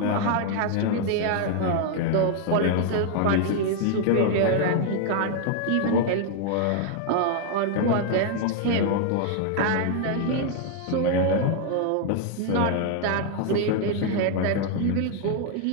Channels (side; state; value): both; different; correlation 0.00